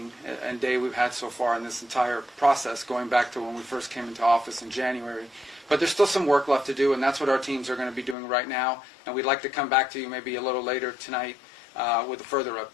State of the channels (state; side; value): drops out; right; at 8.2 s